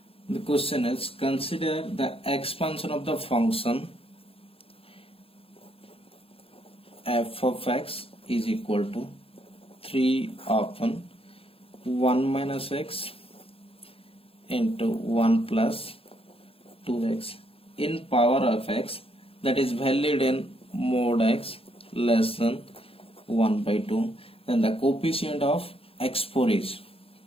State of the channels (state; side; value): late; right; 0.27 ms